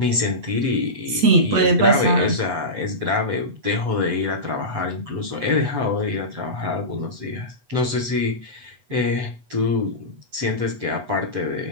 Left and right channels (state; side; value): late; left; 8.1 ms